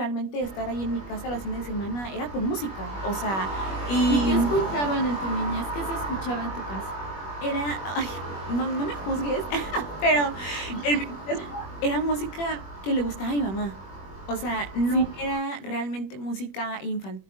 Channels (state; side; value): late; right; 21 ms